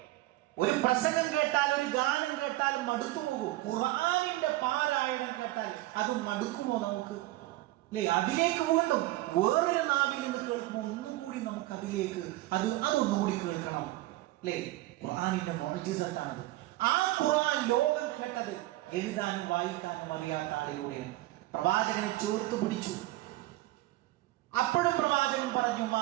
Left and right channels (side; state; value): left; quieter; 17.7 dB